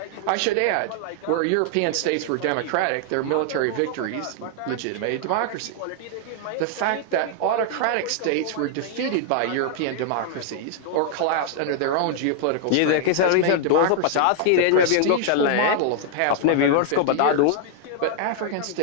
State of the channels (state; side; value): different; both; correlation 0.00